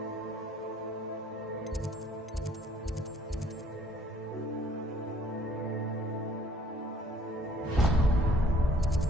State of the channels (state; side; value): normal; both; correlation 0.59